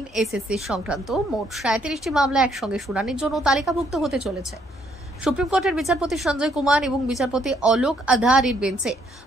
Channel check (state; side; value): normal; both; correlation 0.69